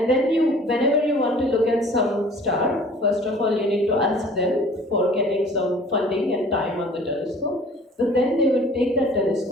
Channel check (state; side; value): normal; both; correlation 0.49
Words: then whenever you want to look at some star, first of all you need to ask them for getting some funding and time on the telescope. But then they would take that